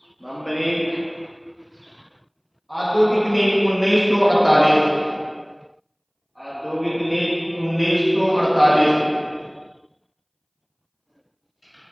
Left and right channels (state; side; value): identical; both; correlation 1.00